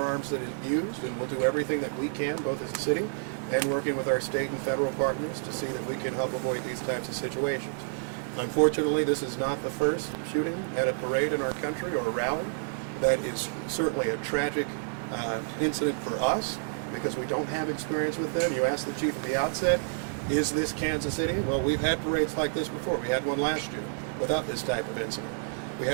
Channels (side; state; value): left; silent; digital silence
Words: that are used, and we'll do everything that we can, both as a city and working with our state and federal partners, to see that we can help avoid these types of situations. Unfortunately, this is not the first shooting at a parade in our country or a rally. That is certainly a tragic incident for us because we don't have experience with them. You asked the chief at the outset, is this Kansas City? Well, we've had parades like this before. We had one last year without this type of incident. We